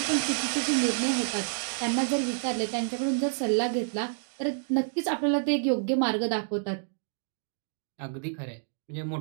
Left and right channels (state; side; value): silent; left; digital silence